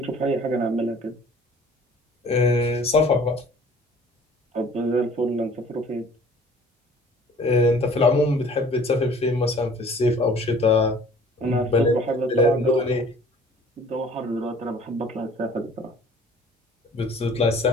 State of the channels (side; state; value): both; normal; correlation 0.51